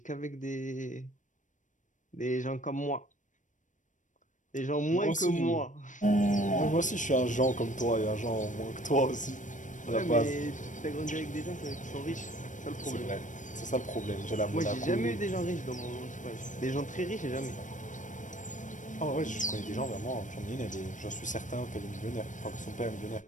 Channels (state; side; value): late; right; 0.37 ms